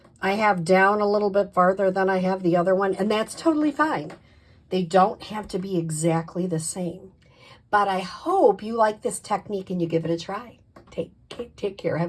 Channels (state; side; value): identical; both; correlation 1.00